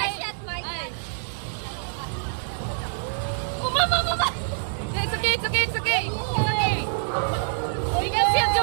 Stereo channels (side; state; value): left; silent; digital silence